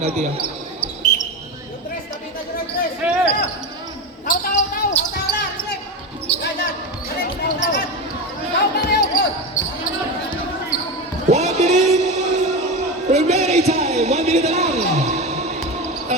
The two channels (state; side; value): normal; both; correlation 0.20